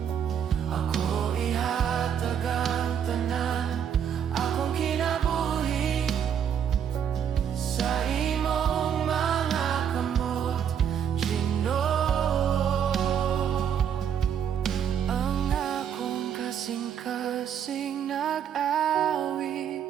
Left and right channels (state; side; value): quieter; left; 8.5 dB